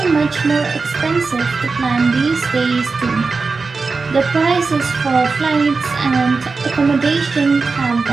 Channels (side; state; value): left; quieter; 4.3 dB